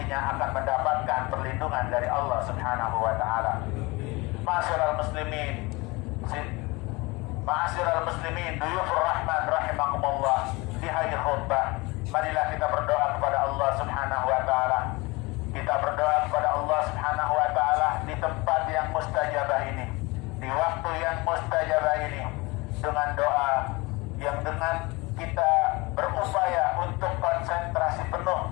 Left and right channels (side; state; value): right; quieter; 24.3 dB